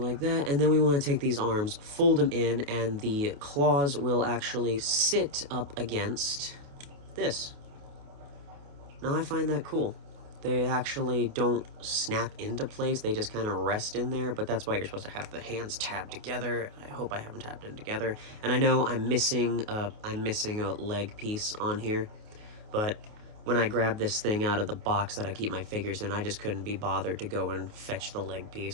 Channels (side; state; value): left; late; 29 ms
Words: then we want to take these arms, fold them in, and the claws will actually sit up against this. Now I find that cool. They actually don't snap into place, they just kind of rest in there, but that's why you're supposed to have the hands tabbed together. I hope I have them tabbed in together. And I know I'm missing a leg piece on here, but when I grabbed this thing out of the box that I keep my figures in, I just couldn't be bothered to go and fetch the leg